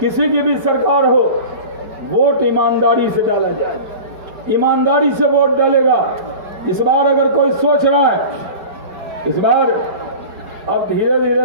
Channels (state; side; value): late; left; 4.7 ms